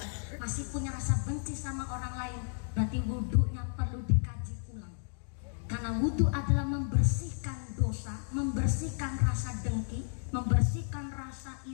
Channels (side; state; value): right; silent; digital silence